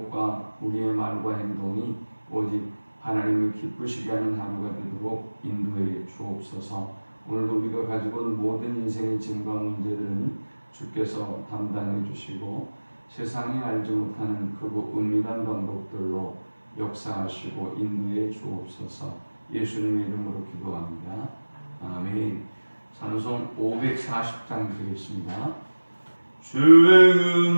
우리의 말과 행동이 오직 하나님을 기쁘시게 하는 하루가 되도록 인도해 주옵소서. 오늘도 우리가 가지고 온 모든 인생의 짐과 문제들은 주께서 담당해 주시고 세상이 알지 못하는 크고 은밀한 방법들로 역사하시고 인도해 주옵소서. 예수님의 이름으로 기도합니다. 아멘. 찬송 540장 드리겠습니다. 주의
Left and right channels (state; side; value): inverted; both; correlation -1.00